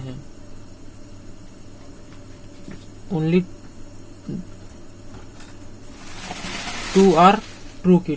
Only 2 are true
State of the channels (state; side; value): identical; both; correlation 1.00